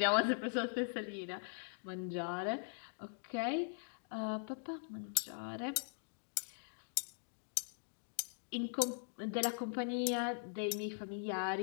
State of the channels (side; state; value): right; silent; digital silence